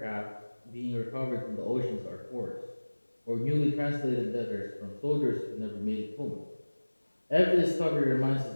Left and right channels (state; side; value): inverted; both; correlation -1.00